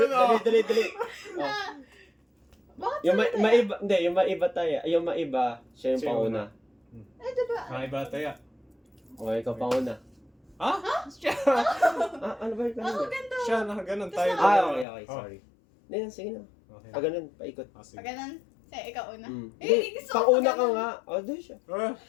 no? Dali. O, Bakit yung sa'yo tayo? maiba, hindi, yung maiba tayo. Yung maiba, siya yung Siya yung panguna. Ay, diba? Ay, bataya. O, ikaw panguna. Ha? Siya! Ah, ano ba yung Ako kanina? ganda. Siya, nakaganon tayo. Ah, dalawa. okay, Oh. sorry. Hindi, sige na. Okay. Pag ganun, paikot. Ah, sige. Pag ganun, sa'yo, ikaw una. Mm. Eh, Hindi, gusto ko panguna pag ka ganun. nga. O, doon siya. Ah,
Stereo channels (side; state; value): right; drops out; at 14.9 s